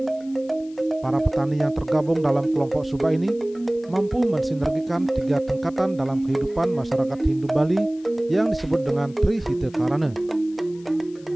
Para petani yang tergabung dalam kelompok subak ini mampu mensinergikan 3 tingkatan dalam kehidupan masyarakat Hindu Bali yang disebut dengan Trihita Karana.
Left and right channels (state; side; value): noise; left; hiss, 27 dB below the sound